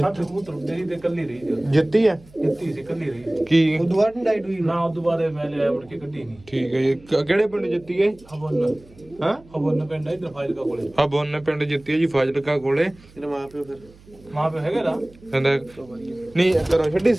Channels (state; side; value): noise; right; hum, 25 dB below the sound